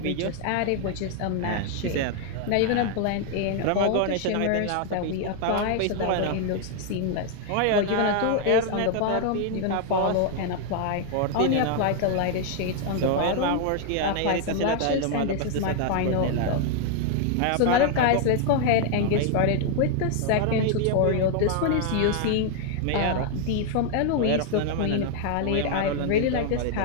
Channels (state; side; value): different; both; correlation 0.00